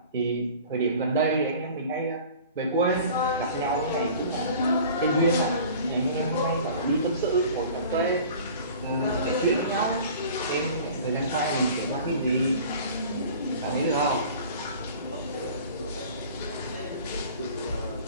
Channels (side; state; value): both; inverted; correlation -0.44